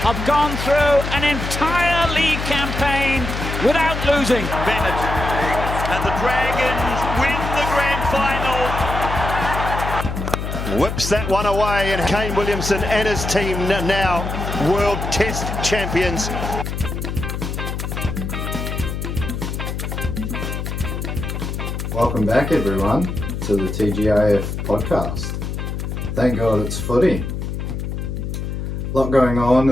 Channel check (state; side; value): noise; left; hum, 4 dB below the sound